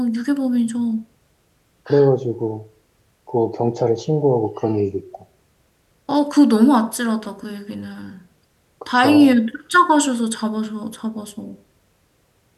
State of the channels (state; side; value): identical; both; correlation 1.00